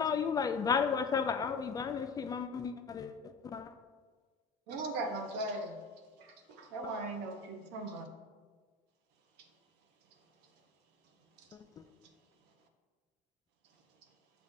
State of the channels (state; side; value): quieter; right; 4.1 dB